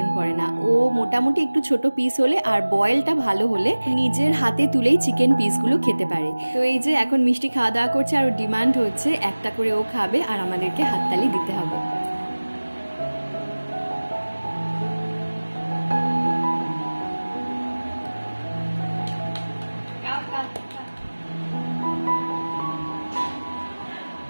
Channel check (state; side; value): inverted; both; correlation -1.00